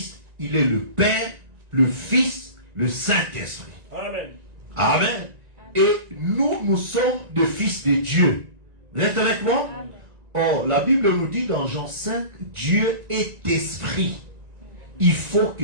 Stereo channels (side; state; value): left; late; 1.9 ms